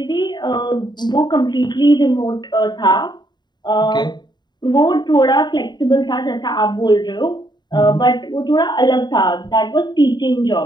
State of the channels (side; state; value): right; late; 0.21 ms